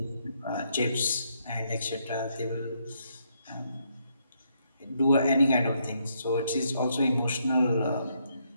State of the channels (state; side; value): inverted; both; correlation -0.75